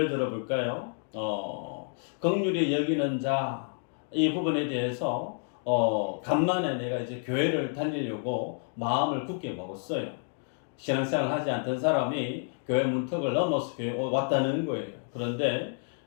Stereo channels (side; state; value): right; silent; 56 dB below the other